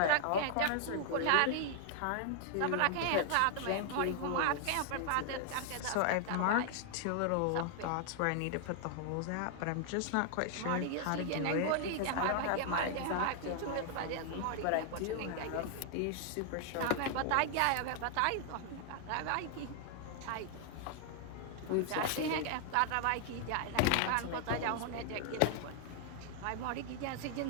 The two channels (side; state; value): both; different; correlation 0.00